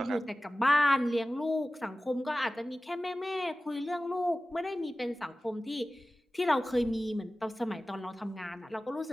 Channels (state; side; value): normal; both; correlation 0.96